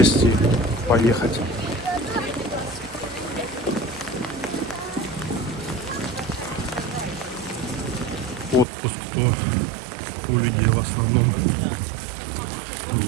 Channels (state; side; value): drops out; left; at 8.7 s